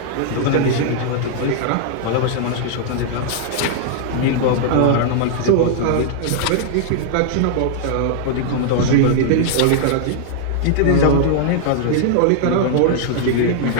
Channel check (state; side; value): different; both; correlation -0.01